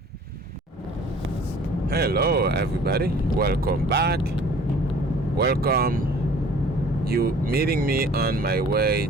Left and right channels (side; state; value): both; normal; correlation 0.51